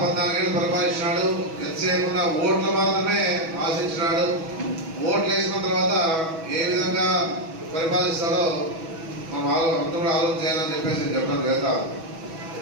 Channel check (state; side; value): late; left; 6.1 ms